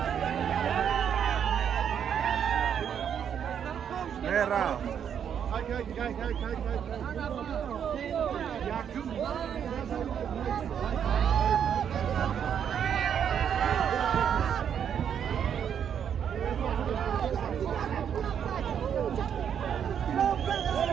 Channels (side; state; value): left; quieter; 8.4 dB